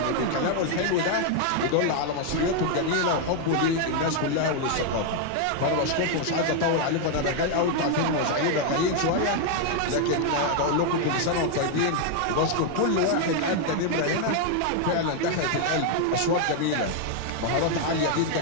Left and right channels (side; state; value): both; different; correlation 0.00